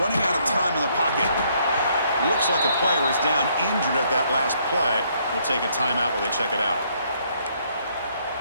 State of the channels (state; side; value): inverted; both; correlation -0.69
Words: Running out of time in the pocket. Looks like a player is down injured at that last play. We'll take a timeout while they check it out.